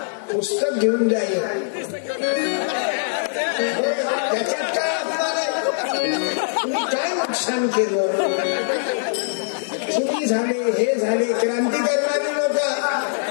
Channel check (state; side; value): silent; right; 64 dB below the other